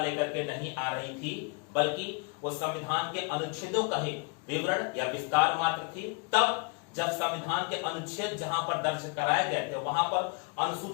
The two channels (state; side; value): quieter; right; 33.2 dB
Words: के नहीं आ रही थी, बल्कि वो संविधान के अनुच्छेदों का ही विवरण या विस्तार मात्र थी। तब जब संविधान के अनुच्छेद जहां पर दर्ज कराए गए थे वहां पर